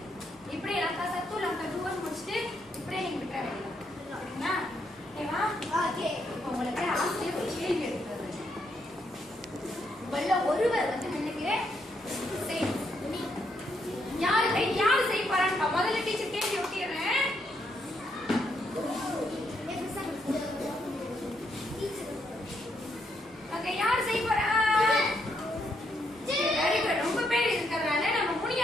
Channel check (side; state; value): right; noise; hum, 28 dB below the sound